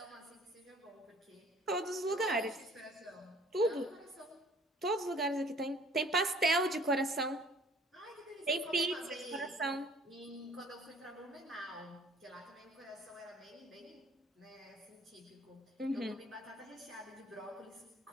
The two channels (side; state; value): both; normal; correlation 0.54